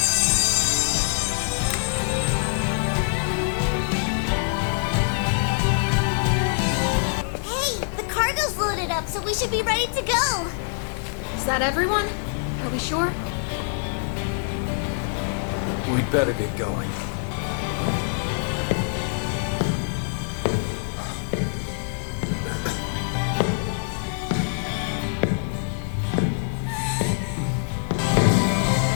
Hey, the cargo's loaded up, so we should be ready to go. Is that everyone? Are we sure? We'd better get going.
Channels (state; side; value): silent; right; digital silence